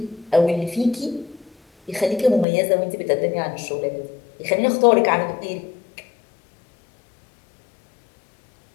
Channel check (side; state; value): right; drops out; at 2.5 s